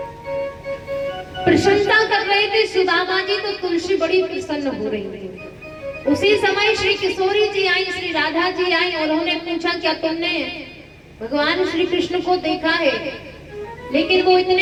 प्रशंसा कर रहे थे सुदामा जी, तो तुलसी बड़ी प्रसन्न हो रही थी। उसी समय श्री किशोरी जी आई, श्री राधा जी आई और उन्होंने पूछा क्या तुमने भगवान श्री कृष्ण को देखा है? लेकिन वो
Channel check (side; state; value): both; identical; correlation 1.00